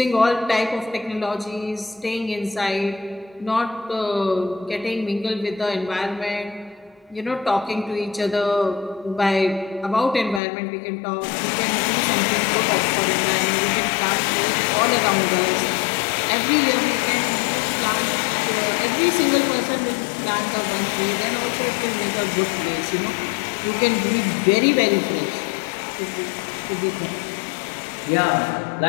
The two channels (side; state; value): right; drops out; at 10.4 s